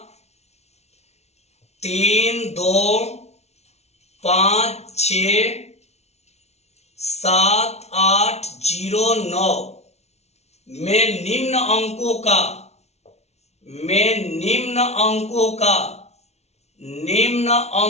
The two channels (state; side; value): late; right; 0.31 ms